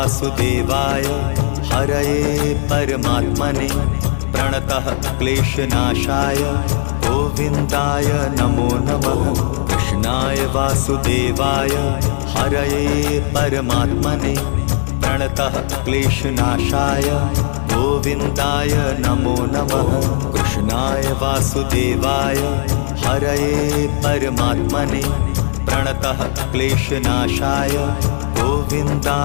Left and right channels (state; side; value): silent; right; digital silence